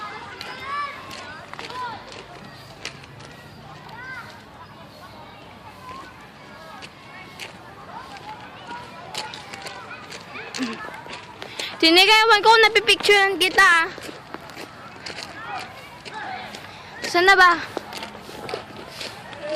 Sinigawan ko, napipicturean kita. Saan na ba?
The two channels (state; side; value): identical; both; correlation 1.00